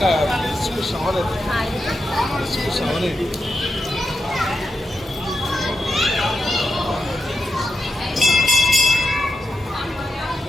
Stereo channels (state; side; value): normal; both; correlation 0.86